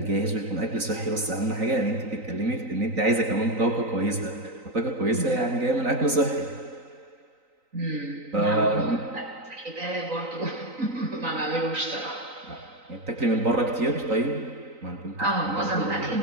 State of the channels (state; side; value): late; left; 3.9 ms